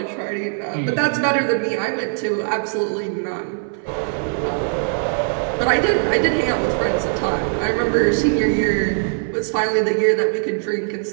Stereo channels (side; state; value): left; silent; 62 dB below the other